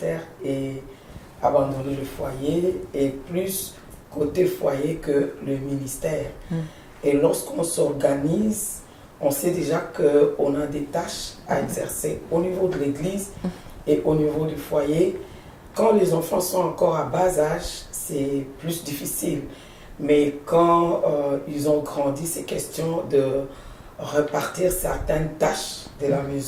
et abandonner le foyer et plus côté foyer que le ministère. Et lorsqu'on s'organise, on sait déjà qu'on a des tâches à exercer au niveau de l'église et au niveau du foyer. Quand les enfants sont encore à bas âge, c'est plus difficile. Mais quand ils ont grandi, c'est question de repartir certaines tâches de la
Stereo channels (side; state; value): both; identical; correlation 1.00